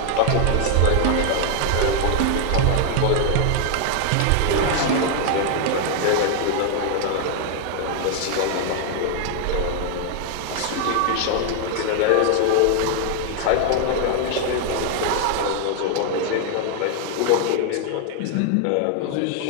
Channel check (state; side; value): different; both; correlation 0.00